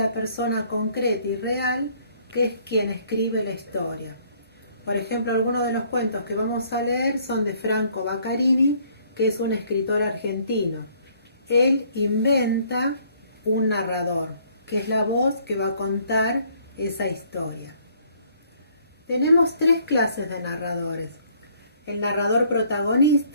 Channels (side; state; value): both; inverted; correlation -0.63